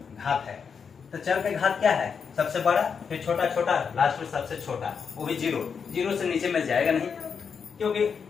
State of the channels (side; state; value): right; quieter; 6.3 dB